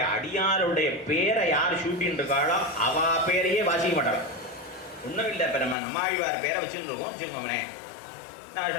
அடியாருடைய பேரை யார் ஷூட்டின்னு இருக்காளோ அவ பேரையே வாசிக்க மாட்டாள். ஒன்றும் இல்லை, இப்போ நம்ம நம்மாழ்வார் பேரை வச்சுன்னு இருக்கோம் வச்சுக்கோங்களே,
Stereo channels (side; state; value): right; drops out; at 5.8 s